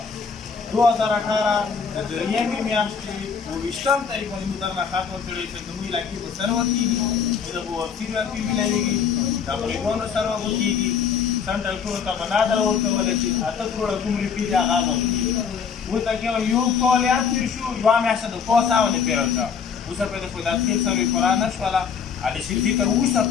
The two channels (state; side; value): quieter; right; 6.4 dB